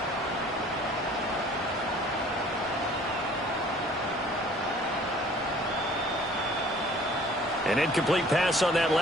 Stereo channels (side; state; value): both; normal; correlation 0.52